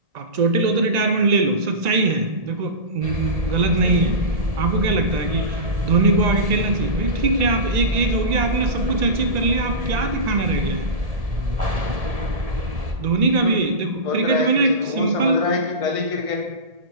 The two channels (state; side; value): late; left; 1.9 ms